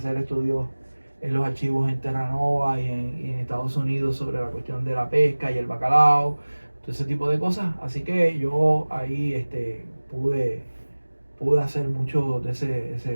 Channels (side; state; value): both; inverted; correlation -1.00